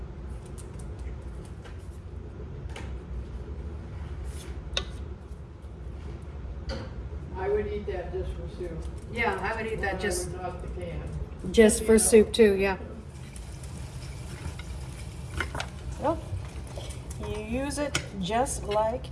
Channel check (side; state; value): both; identical; correlation 1.00